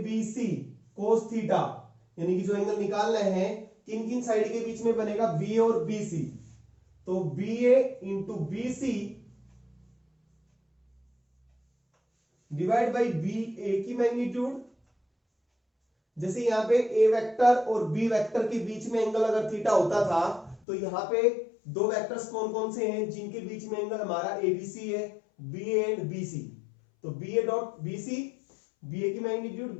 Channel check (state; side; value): drops out; right; at 20.6 s